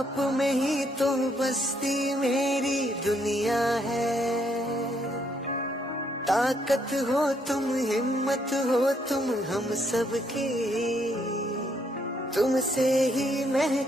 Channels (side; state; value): both; normal; correlation 0.72